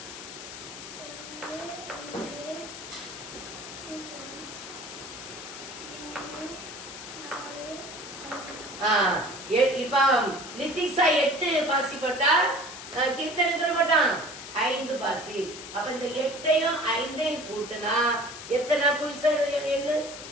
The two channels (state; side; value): noise; left; hiss, 11 dB below the sound